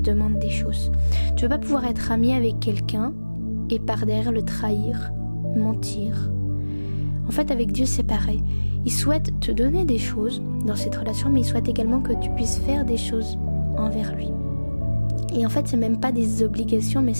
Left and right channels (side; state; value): both; inverted; correlation -1.00